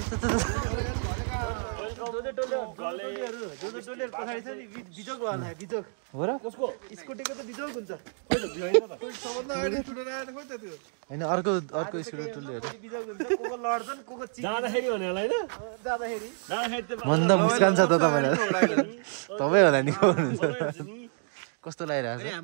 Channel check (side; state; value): left; silent; 59 dB below the other